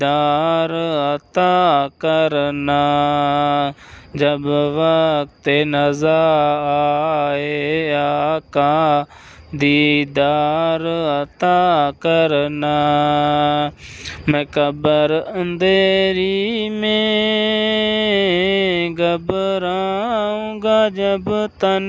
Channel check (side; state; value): both; identical; correlation 1.00